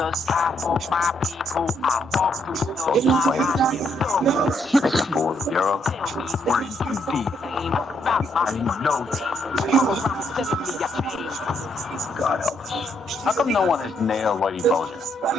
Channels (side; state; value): both; normal; correlation 0.74